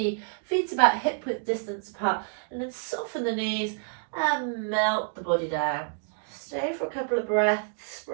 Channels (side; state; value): left; silent; 59 dB below the other